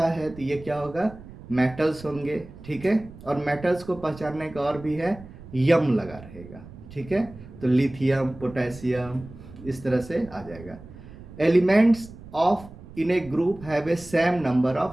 है तो ये क्या होगा, मेटल्स होंगे, ठीक है। और मेटल्स को पहचानने का और भी है, यम लगा रहेगा, ठीक है। तो लिथियम, पोटेशियम, इस तरह से आ जाएगा। Elements of in A group have a same number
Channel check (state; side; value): noise; right; rumble, 17 dB below the sound